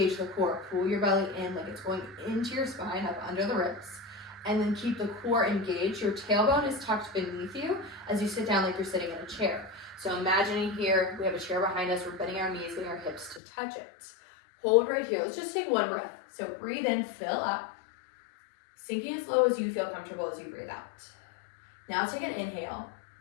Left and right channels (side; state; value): right; drops out; at 13.4 s